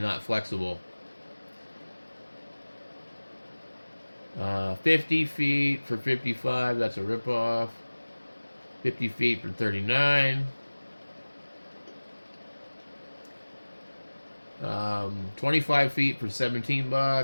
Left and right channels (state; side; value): inverted; both; correlation -1.00